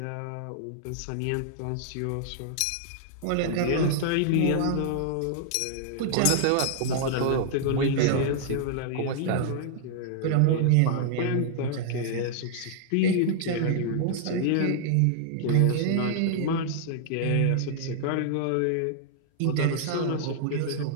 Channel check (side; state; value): both; different; correlation -0.01